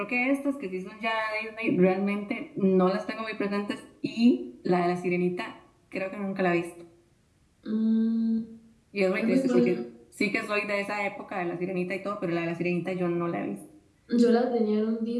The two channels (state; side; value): identical; both; correlation 1.00